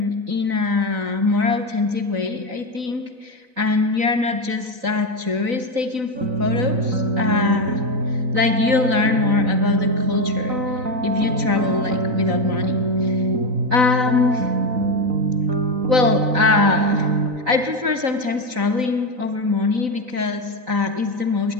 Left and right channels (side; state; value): left; late; 4.0 ms